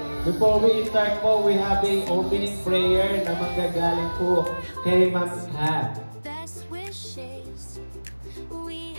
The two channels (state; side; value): inverted; both; correlation -1.00